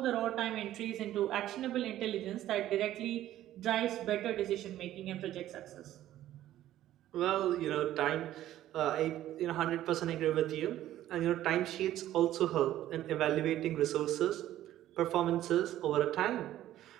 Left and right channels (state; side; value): quieter; left; 13.3 dB